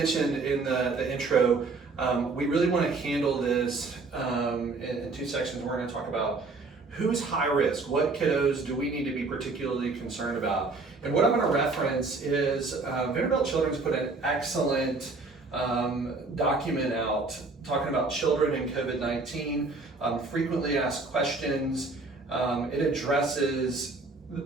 in the intro, we really want to handle this in two sections. We're going to talk about who's high risk, what kiddos do we need to be particularly concerned about. And what I'm going to reference is Vanderbilt Children's put an excellent document out talking about children in COVID-19, frequently asked questions. It addresses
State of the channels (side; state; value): left; quieter; 3.8 dB